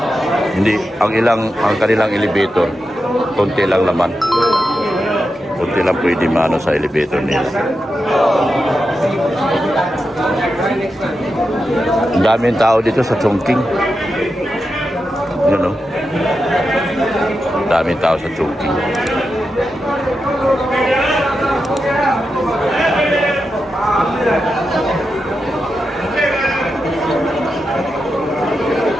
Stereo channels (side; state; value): both; normal; correlation 0.88